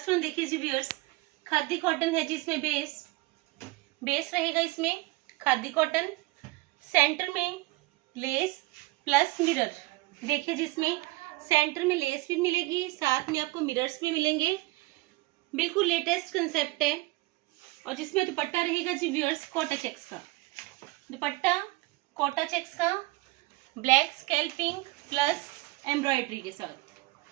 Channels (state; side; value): quieter; left; 21.6 dB